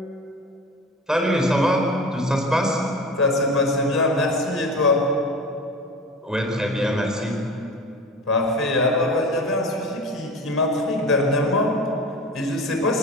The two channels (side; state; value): both; normal; correlation 0.33